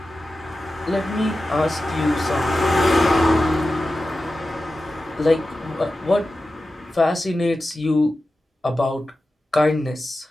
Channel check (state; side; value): normal; both; correlation 0.93